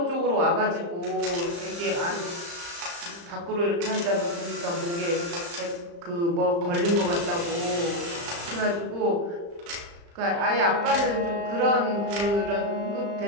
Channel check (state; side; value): late; left; 35 ms